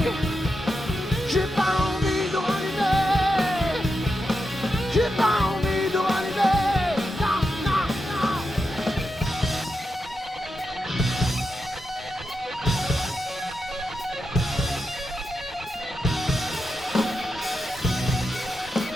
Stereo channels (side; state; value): both; normal; correlation 0.87